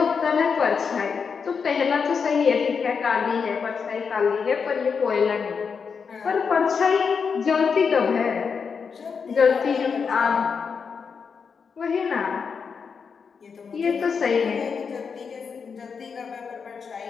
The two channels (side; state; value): right; quieter; 5.9 dB